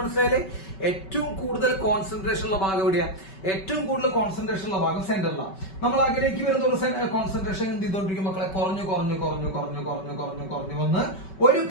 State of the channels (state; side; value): late; right; 5.2 ms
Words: ഏറ്റവും കൂടുതൽ കോൺസെൻട്രേഷൻ ഉള്ള ഭാഗം എവിടെയാ? ഏറ്റവും കൂടുതൽ കോൺസെൻട്രേഷൻ ഉള്ള ഭാഗം സെന്ററിലാണ്. നമ്മൾ അകലേക്ക് വരുന്ന ഒരു കോൺസെൻട്രേഷൻ എന്ത് ചെയ്തോണ്ടിരിക്കും മക്കളെ, കുറഞ്ഞു വന്ന് ഒരു